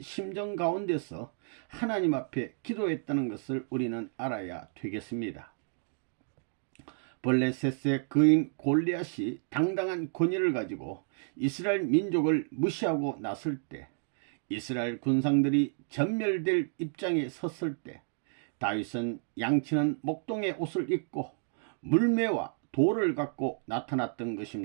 심정 가운데서 하나님 앞에 기도했다는 것을 우리는 알아야 되겠습니다. 블레셋의 그인 골리앗이 당당한 권위를 가지고 이스라엘 민족을 무시하고 났을 때, 이스라엘 군상들이 전멸될 입장에 섰을 때 다윗은 양치는 목동의 옷을 입고 물매와 돌을 갖고 나타났던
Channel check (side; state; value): left; silent; digital silence